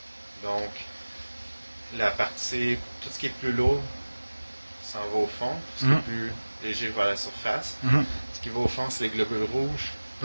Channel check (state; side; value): inverted; both; correlation -1.00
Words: Donc, la partie, tout ce qui est plus lourd s'en va au fond. Ce qui est plus léger va à la surface. Ce qui va au fond, c'est les globules rouges.